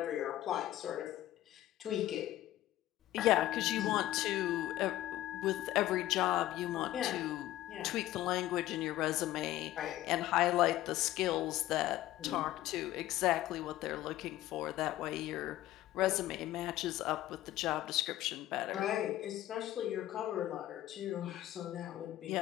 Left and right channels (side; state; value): right; quieter; 14.5 dB